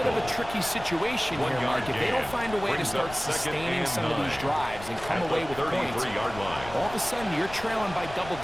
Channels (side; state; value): left; noise; rumble, 14 dB below the sound